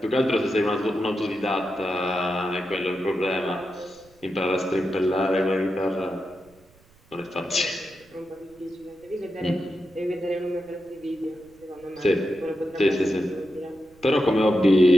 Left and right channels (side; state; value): right; noise; rumble, 29 dB below the sound